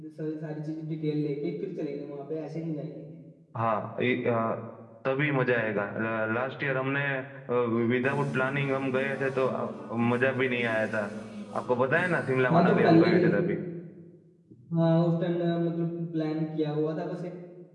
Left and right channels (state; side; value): identical; both; correlation 1.00